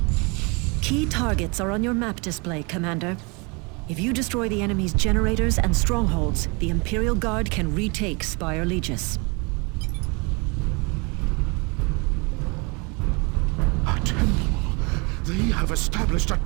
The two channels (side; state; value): left; quieter; 30.1 dB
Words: Key targets are on your map display, Commander. If you destroy the enemy's generators and strongholds, the Imperial Guard can retake Spire Legis. A temple! They have established a